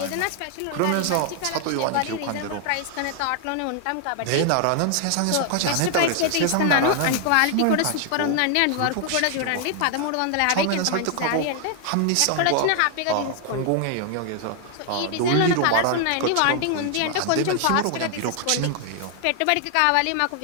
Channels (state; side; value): different; both; correlation 0.00